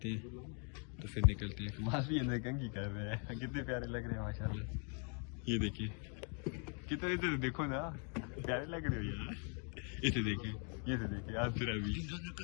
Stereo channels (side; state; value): right; quieter; 39.2 dB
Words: हैं, तो फिर निकलते हैं। कमाल भी अंदर कंघी कर रहे हैं, कितने प्यारे लग रहे हैं माशाल्लाह। ये देखिए कितने, इधर देखो ना, प्यारे लग रहे हो यार। इसे देखिए, ये से देखिए, आज फिर अभी